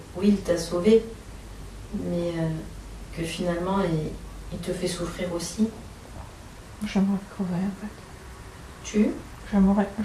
oui, il t'a sauvé, mais que finalement il te fait souffrir aussi? J'aimerais crever en fait.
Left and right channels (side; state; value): both; identical; correlation 1.00